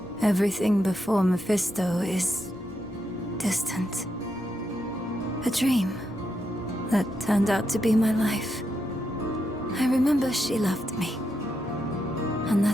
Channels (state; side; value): normal; both; correlation 0.83